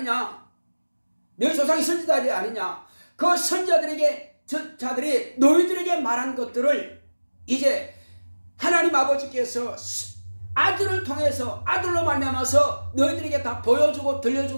너희 조상이 선지자들이 아니냐, 그 선지자들이 너희들에게 말한 것들을 이제 하나님 아버지께서 아들을 통해서 아들로 말미암아서 너희들에게 다 보여주고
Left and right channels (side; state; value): both; inverted; correlation -1.00